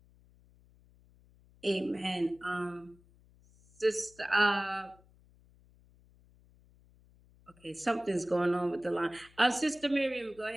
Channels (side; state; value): left; noise; hum, 28 dB below the sound